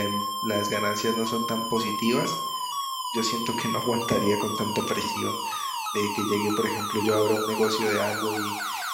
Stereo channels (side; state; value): both; identical; correlation 1.00